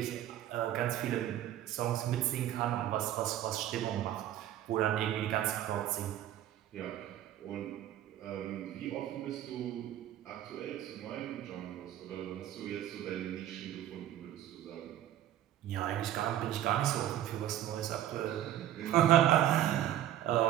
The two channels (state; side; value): quieter; left; 12.2 dB